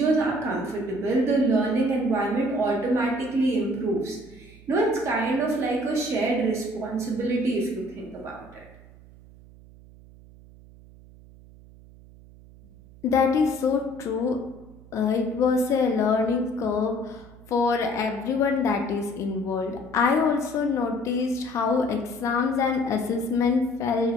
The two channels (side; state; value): right; noise; hum, 22 dB below the sound